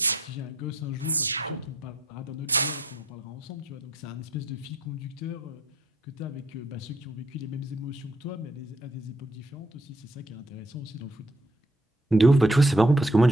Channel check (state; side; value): normal; both; correlation 0.67